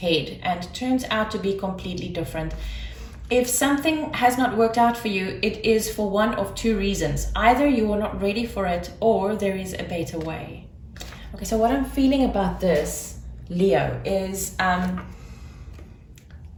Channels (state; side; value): identical; both; correlation 1.00